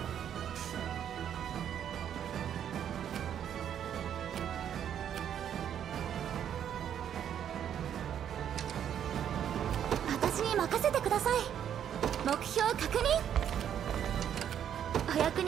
私に任せてください。目標確認。お役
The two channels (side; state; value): left; quieter; 9.4 dB